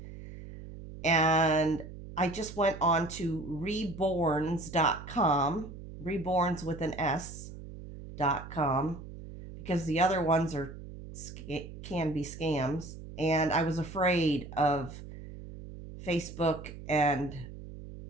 And I just went on to reborns.com, reborns with an S.com, because the other ones can be scams. And I was afraid of Facebook and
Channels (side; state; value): right; noise; hum, 13 dB below the sound